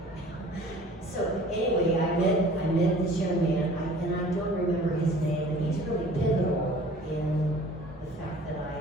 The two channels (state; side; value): normal; both; correlation 0.49